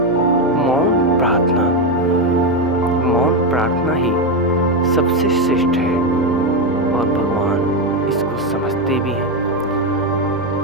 मौन प्रार्थना ही सबसे श्रेष्ठ है और भगवान इसको समझते भी हैं।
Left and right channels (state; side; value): noise; left; hum, 19 dB below the sound